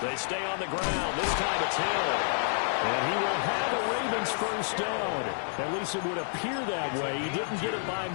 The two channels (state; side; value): silent; right; digital silence